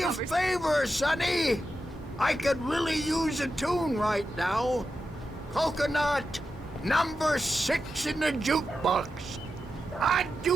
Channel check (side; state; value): both; normal; correlation 0.89